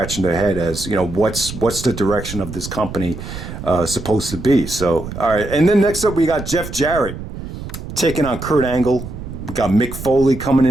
their head as what's the direction of this company supposed to be. So all right, and then next up we got Jeff Jarrett taking on Kurt Angle. We got Mick Foley coming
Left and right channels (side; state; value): right; noise; rumble, 10 dB below the sound